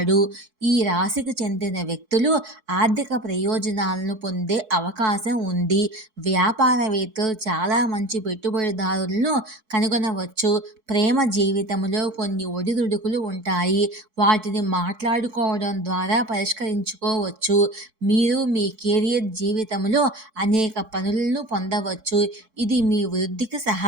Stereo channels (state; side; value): late; left; 4.6 ms